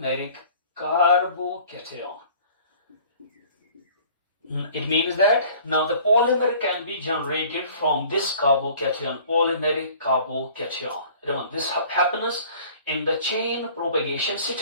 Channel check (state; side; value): inverted; both; correlation -0.50